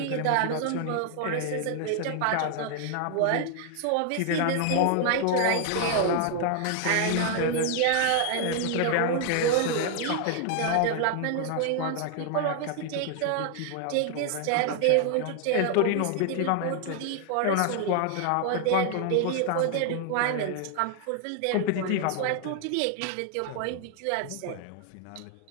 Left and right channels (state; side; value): different; both; correlation 0.00